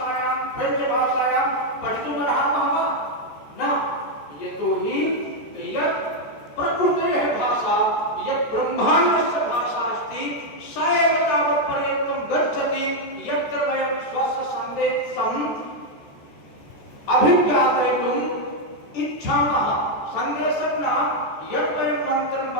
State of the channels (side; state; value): right; late; 14 ms